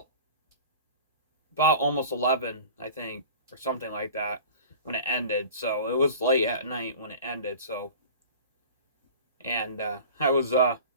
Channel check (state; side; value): inverted; both; correlation -0.40